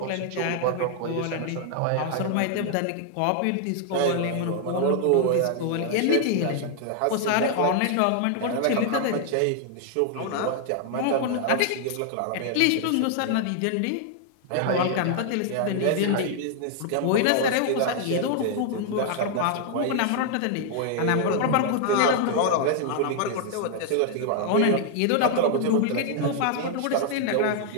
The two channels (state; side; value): different; both; correlation 0.00